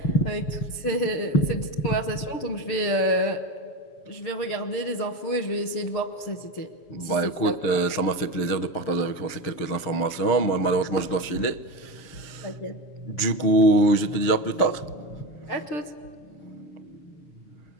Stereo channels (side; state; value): right; late; 7.0 ms